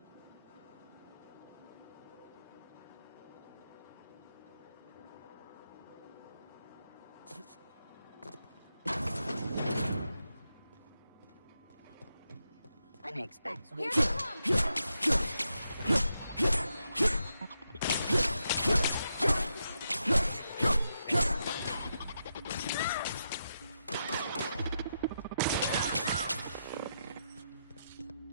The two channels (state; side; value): inverted; both; correlation -0.84